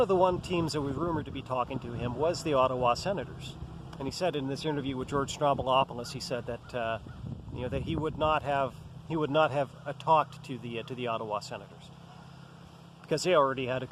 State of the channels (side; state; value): both; identical; correlation 1.00